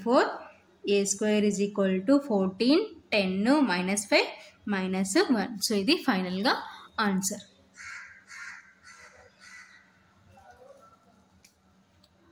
a square is equal to 14 10 -5 -1. So ఇది ఫైనల్గా ఆన్సర్.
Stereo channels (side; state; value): both; identical; correlation 1.00